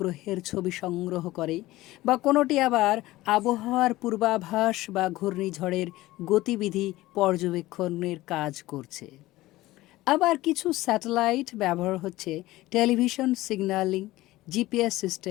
ছবি সংগ্রহ করে, বা কোনোটি আবার আবহাওয়ার পূর্বাভাস বা ঘূর্ণিঝড়ের গতিবিধি পর্যবেক্ষণের কাজ করছে। আবার কিছু স্যাটেলাইট ব্যবহার হচ্ছে টেলিভিশন সিগন্যালিং, জিপিএস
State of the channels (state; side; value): quieter; right; 17.7 dB